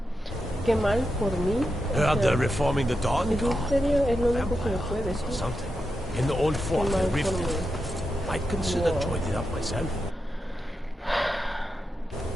Qué mal por mí. Heard they're reforming the Dawn ¿En Guard. serio? Es lo único que me puede decir. Something. In the old fort in Riften. Might consider joining up myself.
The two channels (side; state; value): both; normal; correlation 0.88